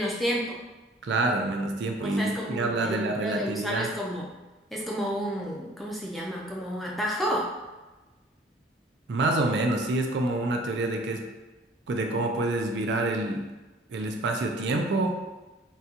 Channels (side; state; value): both; normal; correlation 0.52